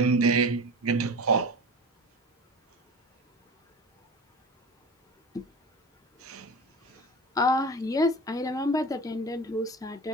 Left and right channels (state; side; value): normal; both; correlation 0.32